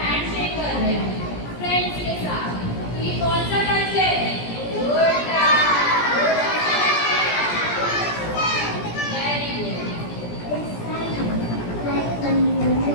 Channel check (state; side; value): late; right; 17 ms